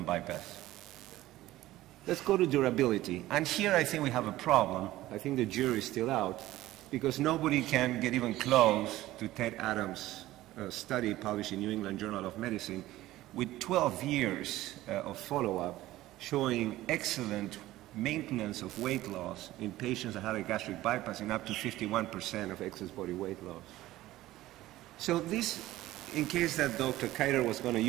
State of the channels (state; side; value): quieter; left; 16.1 dB